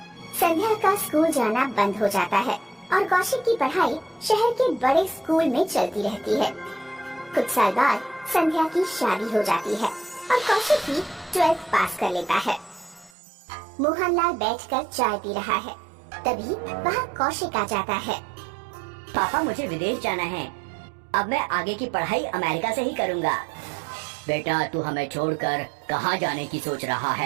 संध्या का स्कूल जाना बंद हो जाता है और कौशिक की पढ़ाई शहर के बड़े स्कूल में चलती रहती है। कुछ साल बाद संध्या की शादी हो जाती है और कौशिक भी 12th पास कर लेता है। मोहनलाल बैठकर चाय पी रहा है, तभी वहाँ कौशिक आ जाता है। पापा, मुझे विदेश जाना है। अब मैं आगे की पढ़ाई अमेरिका से ही करूँगा। बेटा तू हमें छोड़कर कहाँ जाने की सोच रहा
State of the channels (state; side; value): drops out; left; at 13.1 s